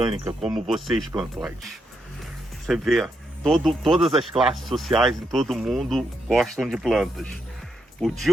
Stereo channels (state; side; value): normal; both; correlation 0.81